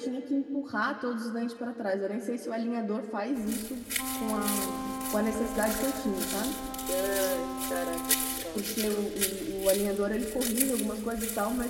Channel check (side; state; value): both; identical; correlation 1.00